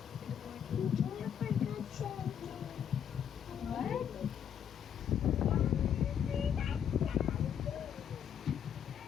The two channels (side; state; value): right; quieter; 8.7 dB